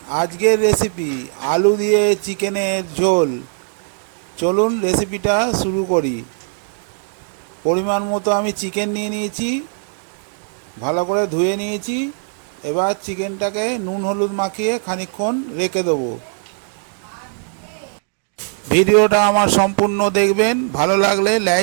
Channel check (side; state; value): left; silent; 59 dB below the other